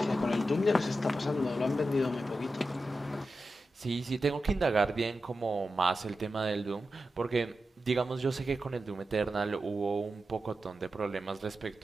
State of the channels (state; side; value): normal; both; correlation 0.91